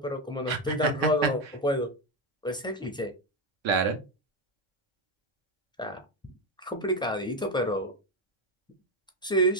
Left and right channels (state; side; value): normal; both; correlation 0.10